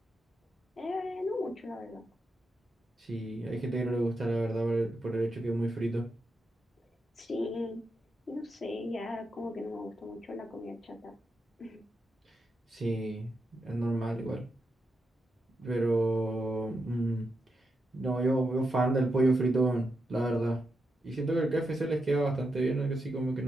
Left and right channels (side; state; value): both; normal; correlation 0.85